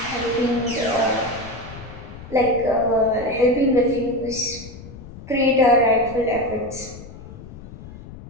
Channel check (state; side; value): noise; left; rumble, 15 dB below the sound